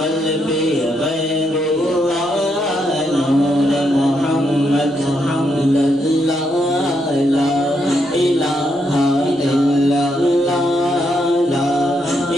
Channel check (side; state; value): both; normal; correlation 0.78